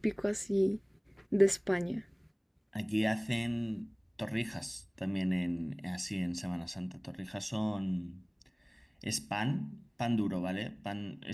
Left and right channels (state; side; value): identical; both; correlation 1.00